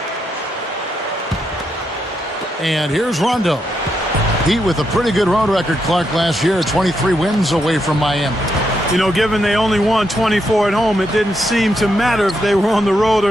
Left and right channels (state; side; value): normal; both; correlation 0.81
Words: And here's Rondo. Heat with a pretty good road record, Clark, last year. 23 wins away from Miami. You know, given they only won 24 at home, it didn't seem to matter if they were on the road